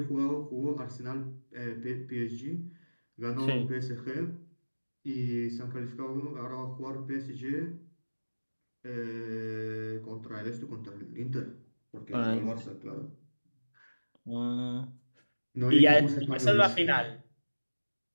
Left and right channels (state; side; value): inverted; both; correlation -1.00